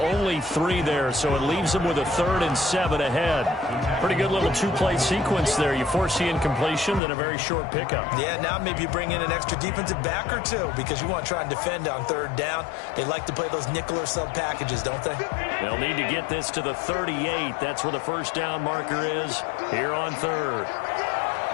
3 there, so it leaves him with a 3rd and 7 ahead. Pretty good little 2-play sequence there. You force the incompletion, then a very short pickup. Yeah, now maybe you bring in an extra defensive back or two because you want to try and defend on 3rd down. They like to play those nickel or sub packages, don't they? They'll need to get this to the 38. That's where the first down marker is here on 3rd.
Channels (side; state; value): right; drops out; at 7.0 s